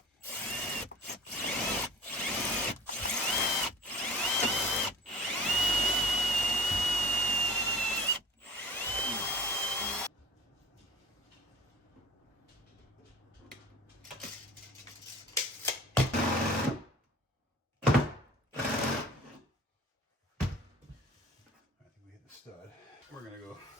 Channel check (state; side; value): normal; both; correlation 0.44